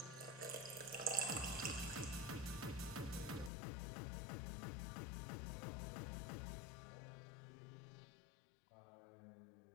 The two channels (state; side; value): drops out; right; at 3.5 s